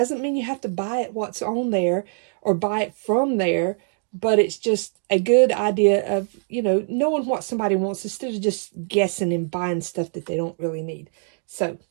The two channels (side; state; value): left; silent; digital silence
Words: mean you have to buy it what's on there or buy it from there, but it's just a good idea of, you know, knowing what somebody wants instead of just guessing and buying stuff that they don't really need. So